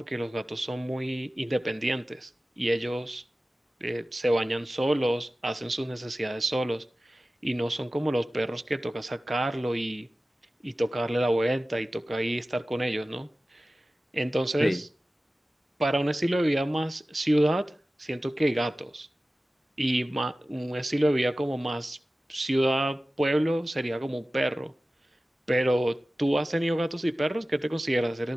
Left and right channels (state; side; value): normal; both; correlation 0.96